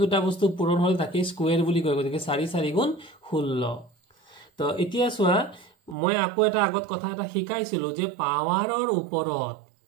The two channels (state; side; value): drops out; left; at 6.0 s